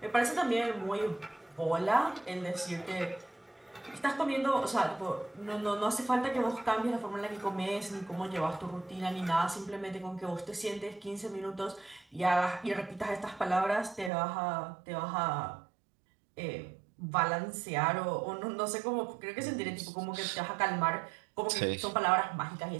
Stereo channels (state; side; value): drops out; left; at 14.1 s